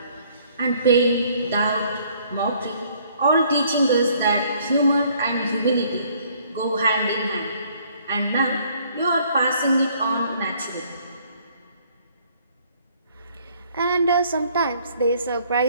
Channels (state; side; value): inverted; both; correlation -0.62